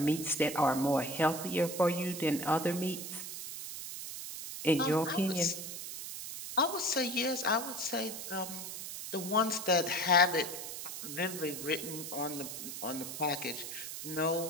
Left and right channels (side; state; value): right; noise; hiss, 8 dB below the sound